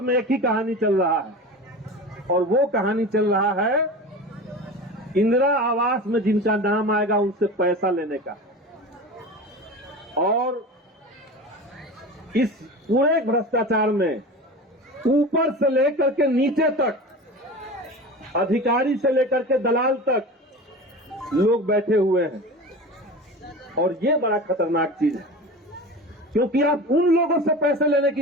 में एक ही कहानी चल रहा है, और वो कहानी चल रहा है इंदिरा आवास में जिनका नाम आएगा उनसे पैसा लेने का। और इस पूरे भ्रष्टाचार में ऊपर से लेकर के नीचे तक, अधिकारी से लेकर के दलाल तक लोग बैठे हुए हैं। और ये बड़ा खतरनाक चीज है, क्योंकि आप उन लोगों से पैसे लेने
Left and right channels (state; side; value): normal; both; correlation 0.32